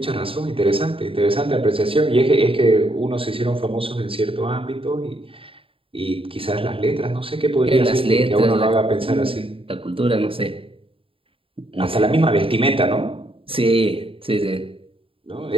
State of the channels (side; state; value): left; late; 0.26 ms